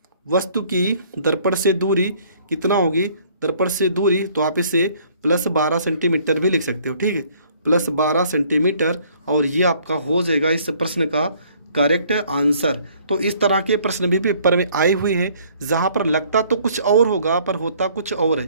वस्तु की दर्पण से दूरी कितना होगी, दर्पण से दूरी, तो आप इसे प्लस 12 सेंटीमीटर भी लिख सकते हो। ठीक है, प्लस 12 सेंटीमीटर, और ये आपका हो जाएगा इस प्रश्न का करेक्ट आंसर। तो इस तरह के प्रश्न भी पेपर में आए हुए हैं, जहाँ पर लगता तो कुछ और होगा पर होता कुछ और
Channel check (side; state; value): both; inverted; correlation -0.60